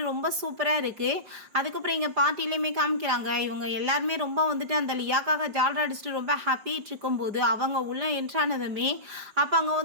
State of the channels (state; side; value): late; left; 5.0 ms